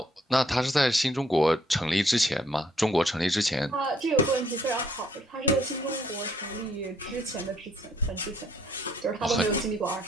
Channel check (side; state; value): both; normal; correlation 0.66